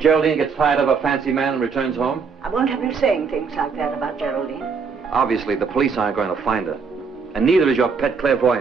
gets tired of a fancy man and returns home? I won't have you saying things like that about Geraldine. Obviously, the police aren't going to find her. And neither is your pet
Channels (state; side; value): quieter; left; 5.4 dB